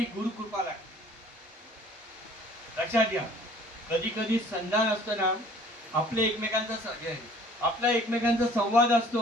गुरुकृपा लागते. लक्षात घ्या. कधी कधी संधान असतो ना, आपल्या एकमेकांचा संवाद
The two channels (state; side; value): normal; both; correlation 0.53